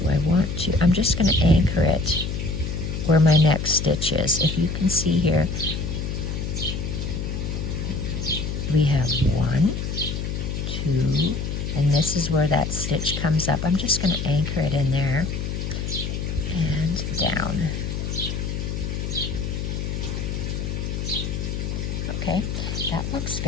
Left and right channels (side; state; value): left; noise; hum, 3 dB below the sound